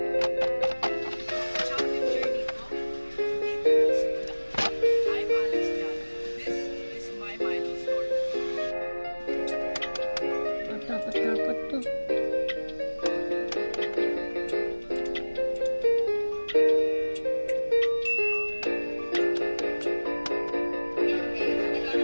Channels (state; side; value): inverted; both; correlation -1.00